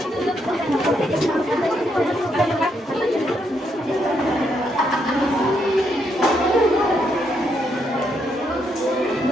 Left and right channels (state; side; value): normal; both; correlation 0.77